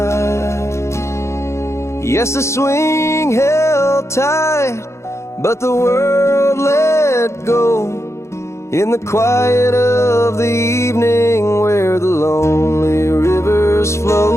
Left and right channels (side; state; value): right; late; 0.13 ms